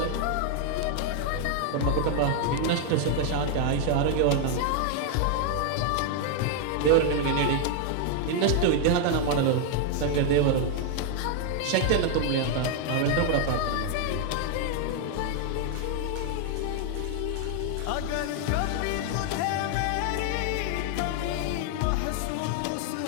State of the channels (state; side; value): different; both; correlation 0.00